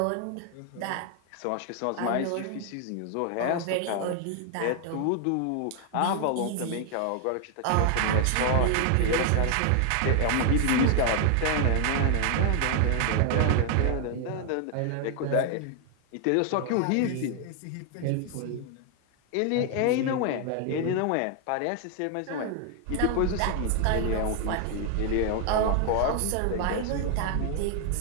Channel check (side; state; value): both; different; correlation 0.00